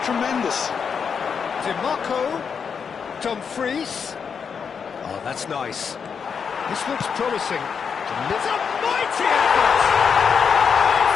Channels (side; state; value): right; quieter; 6.4 dB